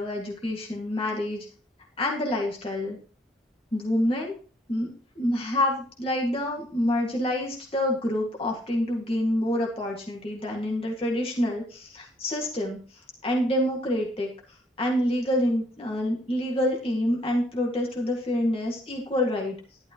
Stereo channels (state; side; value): normal; both; correlation 0.66